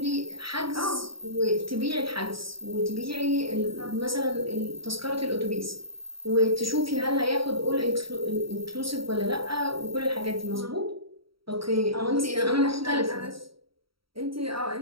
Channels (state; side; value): late; left; 0.75 ms